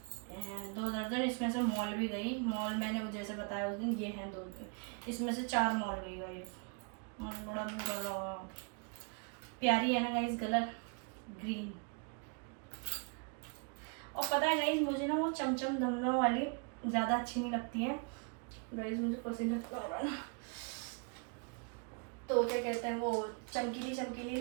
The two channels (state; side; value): quieter; left; 37.0 dB